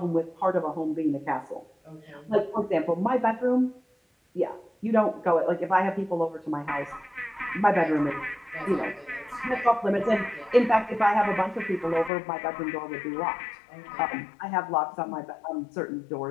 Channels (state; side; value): drops out; right; at 12.1 s